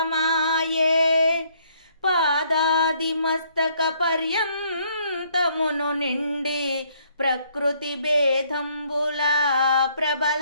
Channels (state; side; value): inverted; both; correlation -0.66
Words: పాదాది మస్తక పర్యంతమును నిండి ప్రకృతి భేదంబుల